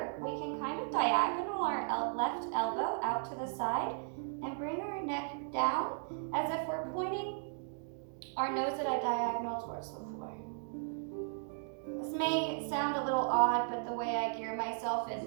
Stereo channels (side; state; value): left; silent; digital silence